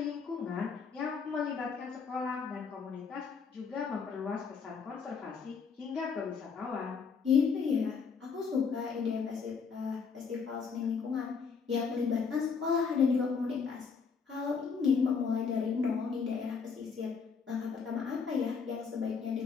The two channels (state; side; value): quieter; right; 5.7 dB